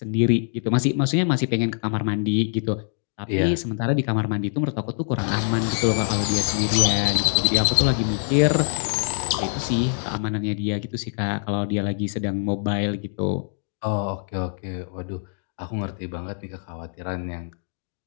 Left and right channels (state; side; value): silent; right; digital silence